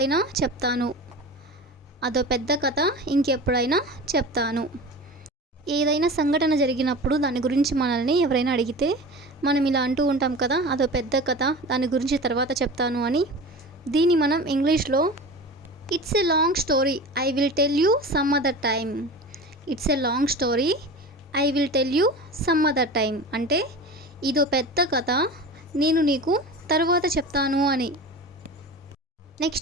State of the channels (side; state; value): both; normal; correlation 0.33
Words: చెప్తాను. అదో పెద్ద కథ ఇంకెప్పుడైనా చెప్తాను. ఏదైనా సంఘటన జరిగినప్పుడు దాని గురించి మనల్ని ఎవరైనా అడిగితే మనం ఇలా అంటూ ఉంటాం కదా, అదో పెద్ద కథ, దాని గురించి తర్వాత చెప్తాను అని. దీన్ని మనం ఇంగ్లీష్లో it's a long story, I will tell you some other time. It's a long story, I will tell you some other time అంటే ఇదో పెద్ద కథ, నేను నీకు తర్వాత చెప్తాను అని.